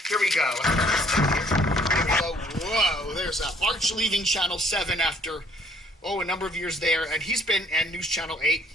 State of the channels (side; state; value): both; normal; correlation 0.61